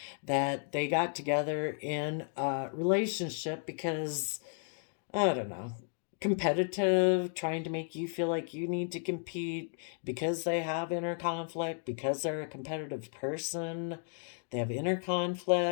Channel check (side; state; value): right; silent; 55 dB below the other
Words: that they got together in a relationship because, I don't know, competitive, trying to make you feel like you need to compete because they have inner conflict, because they're a competitive person. They have inner